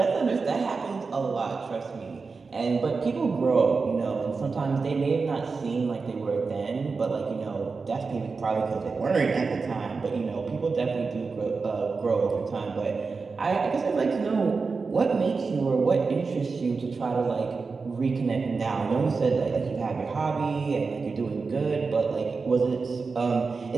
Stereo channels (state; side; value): quieter; left; 4.5 dB